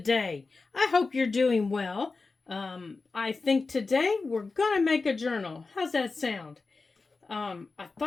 I hope you're doing well. I think today we're going to make a journal. How's that sound? I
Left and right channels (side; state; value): right; quieter; 4.0 dB